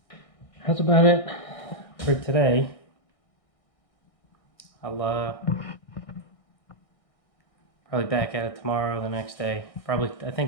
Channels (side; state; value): right; late; 1.6 ms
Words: That's about it for today. I'll probably back at it tomorrow or the next day. Probably, I